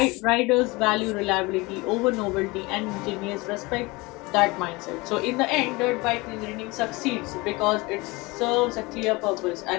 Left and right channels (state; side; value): quieter; right; 23.9 dB